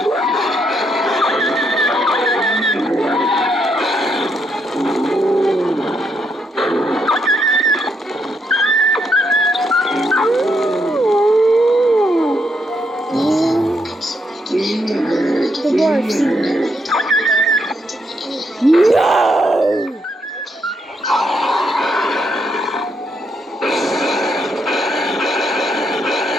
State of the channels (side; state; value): both; normal; correlation 0.77